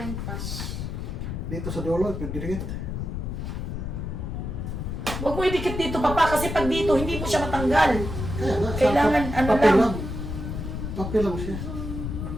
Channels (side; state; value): left; noise; rumble, 5 dB below the sound